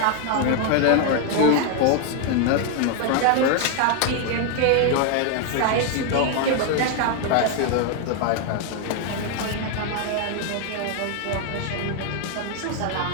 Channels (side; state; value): both; different; correlation 0.01